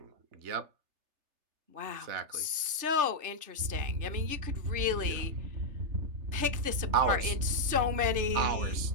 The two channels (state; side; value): late; left; 3.3 ms